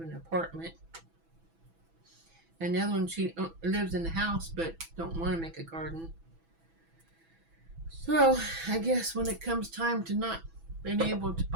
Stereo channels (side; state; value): left; late; 6.1 ms